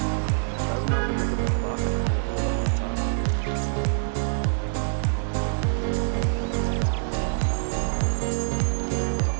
Tayo na ako may kapakla. Tayo ako kamata.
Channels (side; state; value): left; silent; digital silence